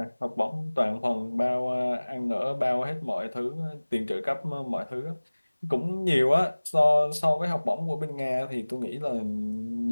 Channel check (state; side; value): inverted; both; correlation -1.00